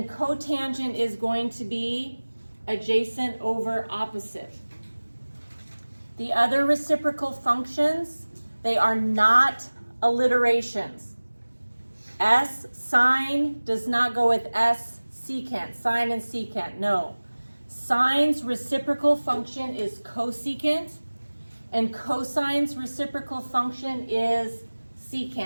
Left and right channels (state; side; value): inverted; both; correlation -1.00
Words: cotangent is going to be adjacent over opposite. The other reciprocal functions, they are not alliterations. S sine does not go with S secant, sine and secant, no. Sine's reciprocal function is cosecant, and cosine's reciprocal function is